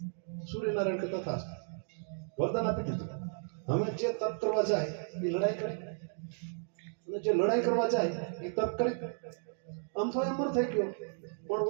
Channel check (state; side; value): silent; left; digital silence